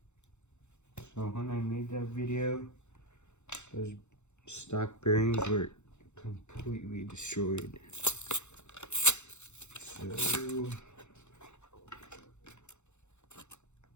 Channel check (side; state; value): right; late; 0.83 ms